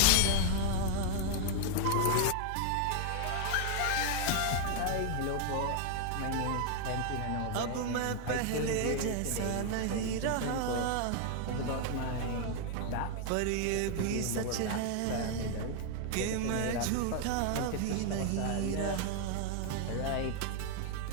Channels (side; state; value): both; different; correlation 0.00